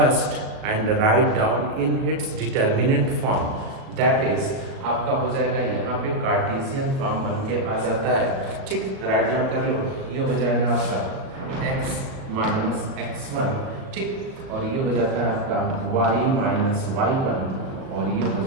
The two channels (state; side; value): late; left; 37 ms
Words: and write down in its determinant form, that is आपका हो जाएगा यहाँ पे कार्टेशियन फॉर्म बन के आ जाता है। ठीक, राइट डाउन कर लो, ये हो जाएगा आपका x माइनस x1। ठीक, और ये हो जाता है आपका y माइनस y1 और ये हो